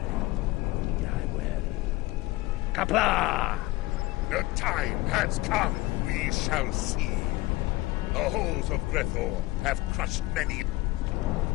die well. Kapla! The time has come. We shall see. The halls of Grethor have crushed many.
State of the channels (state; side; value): quieter; right; 19.7 dB